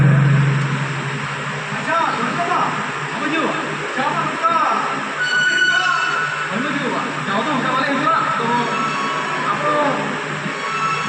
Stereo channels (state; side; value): identical; both; correlation 1.00